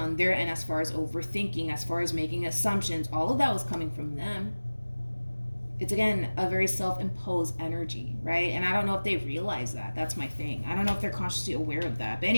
their end as far as overthinking, as far as making assumptions, all of that was coming from them. It's, again, a very self-imposed energy, right? And I don't know if they realize that. That's my thing. I don't know if they're consciously aware of that. But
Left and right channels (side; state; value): both; inverted; correlation -1.00